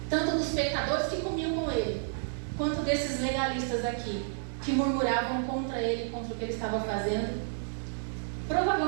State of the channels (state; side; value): silent; left; digital silence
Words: tanto dos pecadores que comiam com ele, quanto desses legalistas aqui, que murmuravam contra ele, contra o que ele estava fazendo.